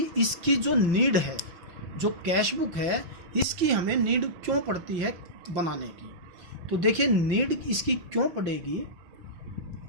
इसकी जो नीड है, जो कैश बुक है, इसकी हमें नीड क्यों पड़ती है बनाने की. तो देखिए, नीड इसकी क्यों पड़ेगी.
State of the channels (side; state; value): left; late; 5.8 ms